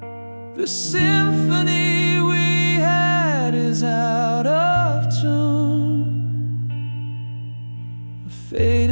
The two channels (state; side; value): inverted; both; correlation -1.00